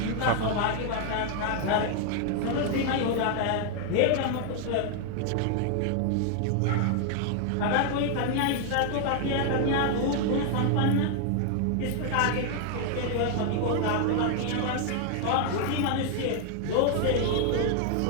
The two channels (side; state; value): both; different; correlation 0.00